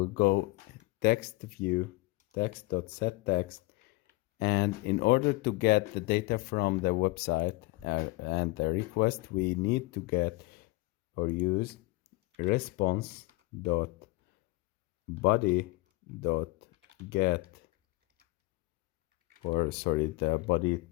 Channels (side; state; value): right; quieter; 21.8 dB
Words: go text view text.setText, and in order to get the data from the website and the request, we need to get or use response dot body dot get, or sorry, the body